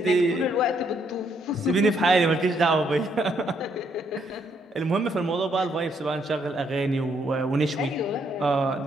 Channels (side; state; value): both; normal; correlation 0.72